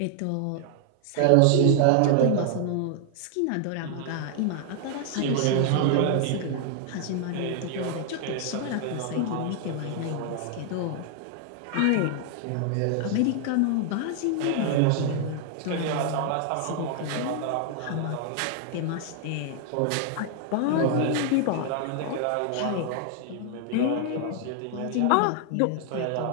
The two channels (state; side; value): different; both; correlation 0.00